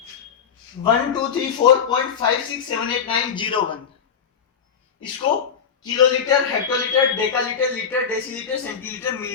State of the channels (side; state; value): right; quieter; 7.1 dB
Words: 12345678901, इसको kilolitre, hectolitre, decalitre, litre, decilitre, centilitre,